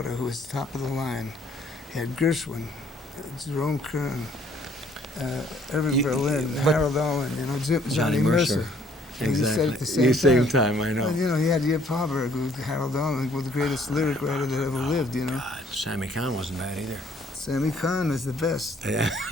who was top of the line. You had Gershwin, Jerome Kern, Irving Berlin, but- Harold Owen. You know, Johnny Mercer. And you said at the same time. I know. Well, you know, he had Yip Harburg, who Harold Owen was the greatest lyric writer that ever lived, you know. Sammy Cahn wasn't bad either. Sammy Cahn was the best.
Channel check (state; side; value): normal; both; correlation 0.62